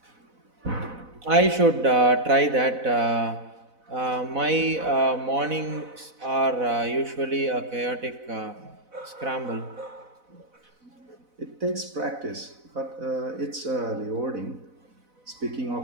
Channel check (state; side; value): late; left; 4.0 ms